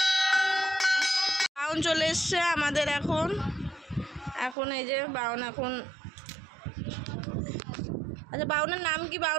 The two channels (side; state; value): left; drops out; at 4.5 s